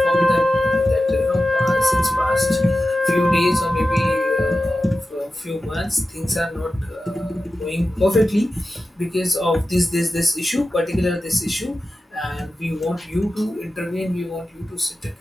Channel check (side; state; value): both; normal; correlation 0.93